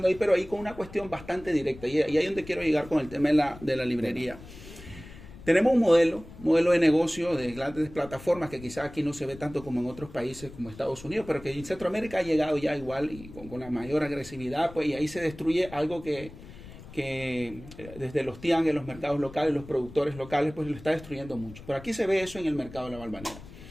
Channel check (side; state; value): left; noise; rumble, 17 dB below the sound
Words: ahí, pero ahí con una cuestión bastante directa. Y ahí es donde quiero llegar con el tema de la librería. Tenemos un modelo de negocio de grandes plataformas que quizás aquí no se ve tanto como en otros países como Estados Unidos, pero que en Centroamérica ha llegado ya igual y con la mayor agresividad, pues, y ahí se destruye algo que desde los tianguis, los mercados locales, los productores locales, pues lo está destruyendo mucho. Pero aquí se ve eso en el mercado de la Valvanera.